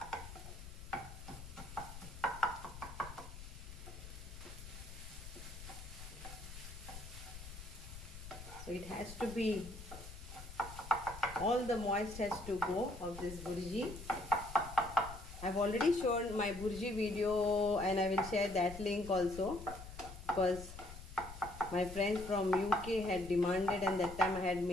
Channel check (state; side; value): noise; left; rumble, 12 dB below the sound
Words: So it has to be, all the moist has to go of this burji. I've already shown my burji video and I will share that link also, because my friends from UK had demanded and that time I had